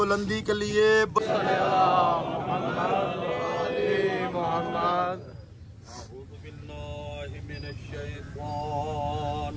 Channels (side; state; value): both; identical; correlation 1.00